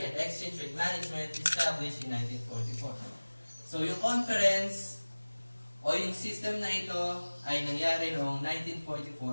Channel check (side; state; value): both; inverted; correlation -1.00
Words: and exchange rate management established in 1944. So yung conference o yung system na ito ay nangyari noong